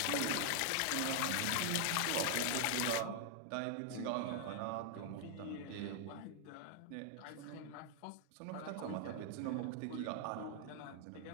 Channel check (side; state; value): both; different; correlation 0.00